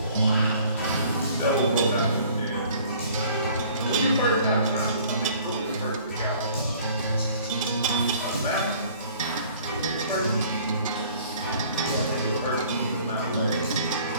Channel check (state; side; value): inverted; both; correlation -0.54